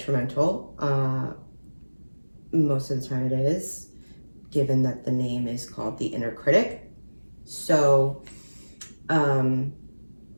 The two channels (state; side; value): inverted; both; correlation -1.00